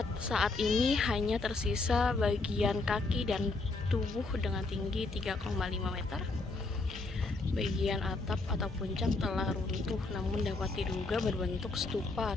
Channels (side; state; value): right; quieter; 3.5 dB